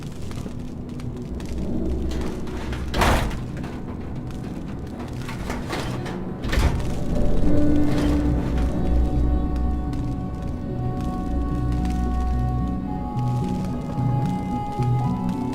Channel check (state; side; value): identical; both; correlation 1.00